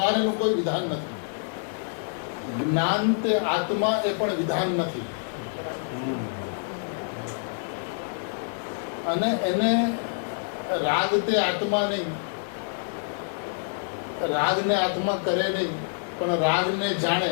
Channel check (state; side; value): silent; right; digital silence